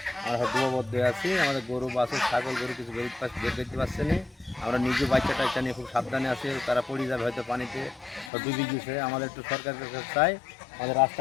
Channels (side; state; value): right; drops out; at 8.3 s